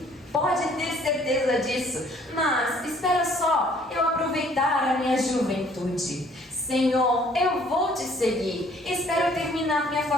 Pode ter certeza disso, mas espera só eu aproveitar a minha juventude. Senhor, eu vou te seguir. Espero terminar minha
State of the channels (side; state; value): both; normal; correlation 0.59